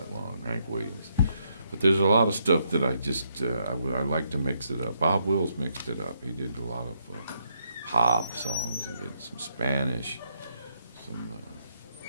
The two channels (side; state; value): both; inverted; correlation -0.76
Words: long, Hank Williams. But there's a lot of stuff that I just, I like to mix it up. Bob Wills mixed it up. He did a lot of pop songs. He did some Spanish, some,